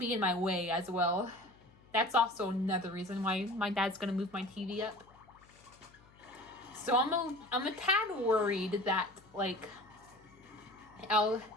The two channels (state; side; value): noise; left; hum, 27 dB below the sound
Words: in my way as well. That's also another reason why my dad's gonna move my TV up. So I'm a tad worried that, like,